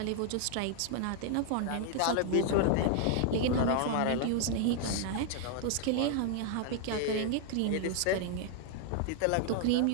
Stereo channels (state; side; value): different; both; correlation 0.00